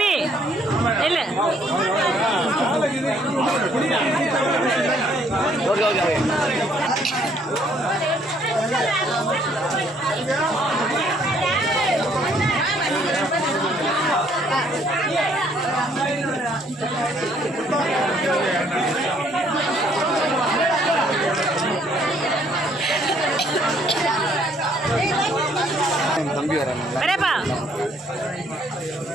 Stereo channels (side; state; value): both; normal; correlation 0.64